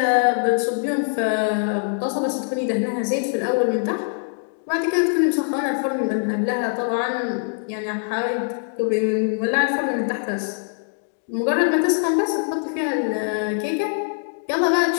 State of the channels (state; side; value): silent; right; digital silence